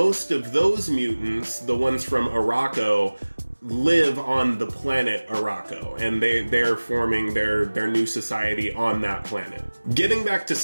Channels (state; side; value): inverted; both; correlation -1.00